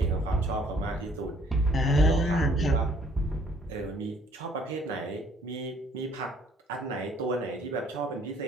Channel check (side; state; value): both; normal; correlation 0.61